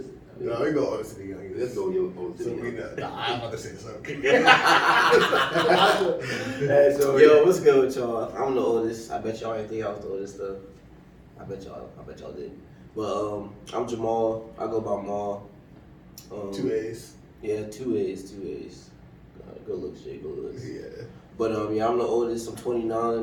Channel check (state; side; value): identical; both; correlation 1.00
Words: we go oldest to the youngest. Let's go oldest to So the we youngest. know. Nah, I'm about to say something. Hey, so Yo, what's good with y'all? I'm the oldest. I bet y'all ain't think I was the oldest though. I bet y'all did. But I'm Jamal. I go by Maul. 2 A's. Yeah, 2 A's. Good looks, Jay. Good looks. Yeah. But yeah, I'm the oldest. I'm 29.